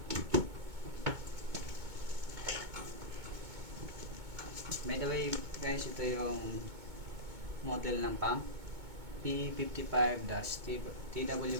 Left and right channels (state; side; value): late; left; 2.2 ms